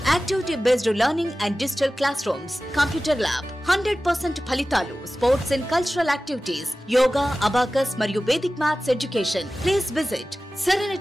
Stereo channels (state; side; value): normal; both; correlation 0.96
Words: activity based learning and digital class rooms, computer lab, 100% ఫలితాలు, sports and cultural activities, yoga, abacus మరియు Vedic maths education. Please visit